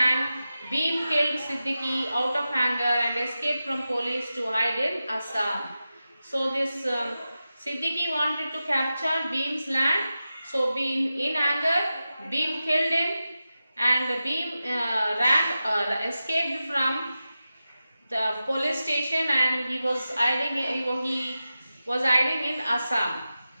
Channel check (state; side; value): inverted; both; correlation -0.93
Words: Bhim killed Siddiqui out of anger and escaped from police to hide in Assam. So this Siddiqui wanted to capture Bhim's land. So in anger, Bhim killed him, and Bhim escaped from the police station, and he was hiding in Assam.